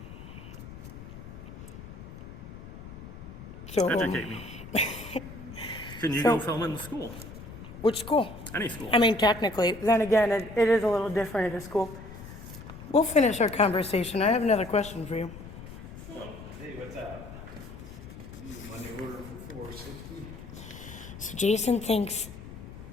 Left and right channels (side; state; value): left; noise; rumble, 13 dB below the sound